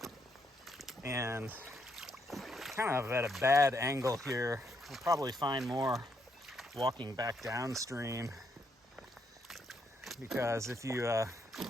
And kind of at a bad angle here. We'll probably find more walking back downstream. Because if you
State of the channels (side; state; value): both; normal; correlation 0.76